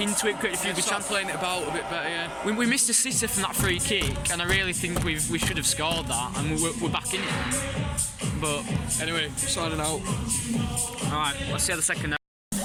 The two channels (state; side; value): identical; both; correlation 1.00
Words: it, created a few good Start chances. playing it about a bit better, yeah. We missed a sitter from that free kick, and I really think we should have scored that, and we're back in it. But Anyway, signing out. all right, let's see how the second half.